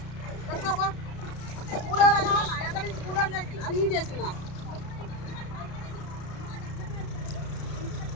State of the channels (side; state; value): right; late; 32 ms